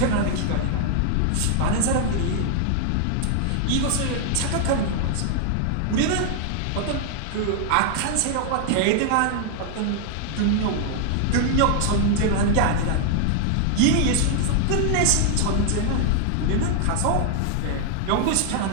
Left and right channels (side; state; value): both; different; correlation 0.00